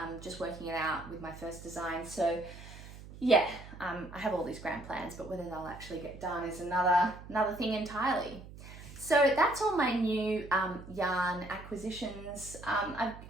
just working it out with my first design. So yeah, I have all these grand plans, but whether they'll actually get done is another thing entirely. So that's all my new yarn acquisitions.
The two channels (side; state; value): right; noise; hum, 15 dB below the sound